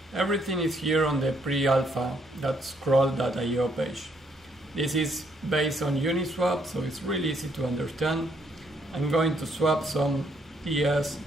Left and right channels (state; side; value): normal; both; correlation 0.71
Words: Everything is here on the pre-alpha, that scroll.io page. This is based on Uniswap, so it's really easy to understand. I'm going to swap some TS